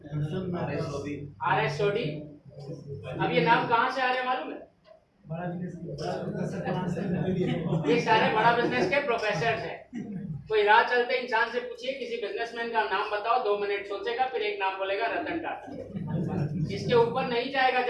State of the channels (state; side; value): identical; both; correlation 1.00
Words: R S सोडी। अब ये नाम कहाँ से आ रहे हैं मालूम है? ये सारे बड़ा बिजनेस के प्रोफेसर हैं। कोई राह चलते इंसान से पूछिए किसी बिजनेसमैन का नाम बताओ, 2 मिनट सोचेगा, फिर एक नाम बोलेगा रतन टाटा। इसके ऊपर नहीं जाएगा